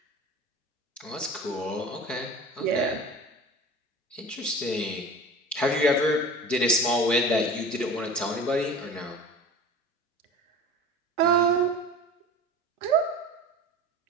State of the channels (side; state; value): both; normal; correlation 0.37